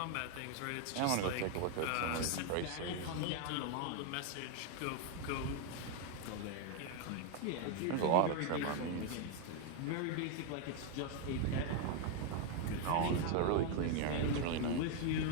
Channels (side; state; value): both; different; correlation 0.01